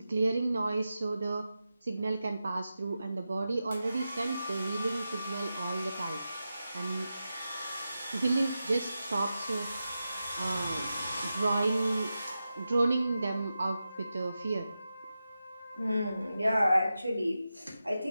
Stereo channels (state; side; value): inverted; both; correlation -0.91